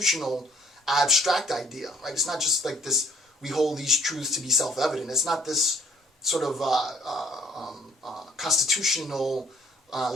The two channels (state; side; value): normal; both; correlation 0.61